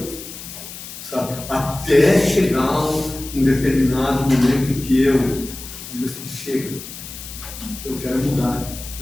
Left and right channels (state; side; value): noise; left; hiss, 12 dB below the sound